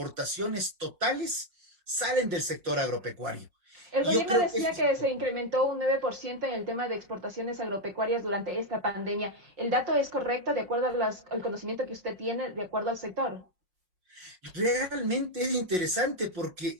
totales salen del sector agropecuario. El Y yo gobierno creo que decía esto es que se importante. incrementó un 9% en el tema de exportaciones agropecuarias durante esta pandemia. ¿El dato es correcto de acuerdo al conocimiento que usted tiene, de acuerdo al sector? Realmente es interesante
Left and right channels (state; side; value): late; left; 5.5 ms